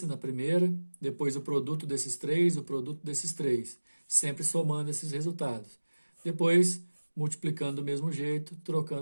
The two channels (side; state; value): both; inverted; correlation -1.00